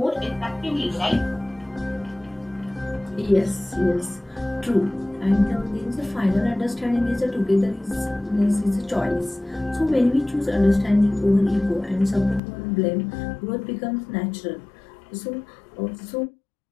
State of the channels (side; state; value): right; drops out; at 12.4 s